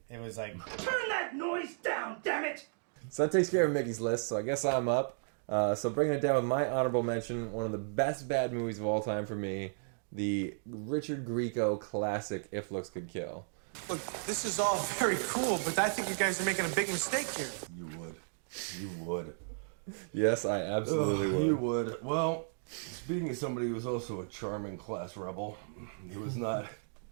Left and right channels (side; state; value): left; silent; digital silence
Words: It was like, Turn that noise down, damn it! So that takes care of Mickey's list, so I guess I'm up. So bringing it down with my honorable mention, one of the best bad movies of all time for me, the Richard Grieco classic If Looks Could Kill. Look, this is all very cool, but I think you guys are making a big mistake here. You would. You would. Yes, I absolutely would. You would. Well, speaking of somebody who was also a charming class rebel, he was not